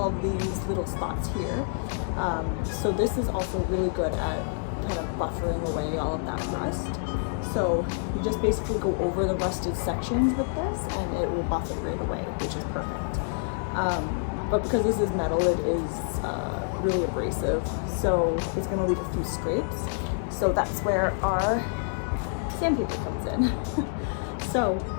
of these little spots here. So this is also really good at kind of buffering away all of that rust. So you just basically go over the rusted sections with this and it will buff it right away, which is perfect. But because this is metal, it is really abrasive, so it's going to leave a few scrapes. So that's where our sandpaper comes in. So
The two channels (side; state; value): right; silent; digital silence